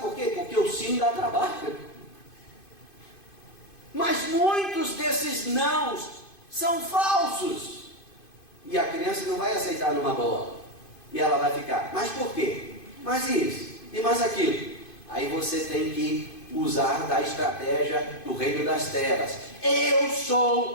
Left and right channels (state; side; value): late; right; 2.5 ms